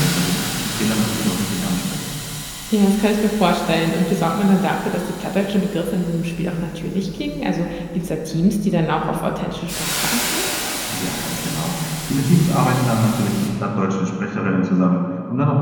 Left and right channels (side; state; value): both; identical; correlation 1.00